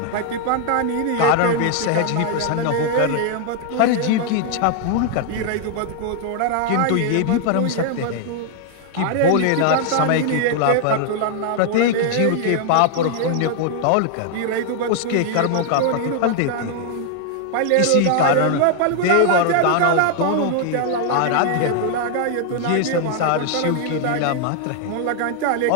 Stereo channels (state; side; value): different; both; correlation 0.00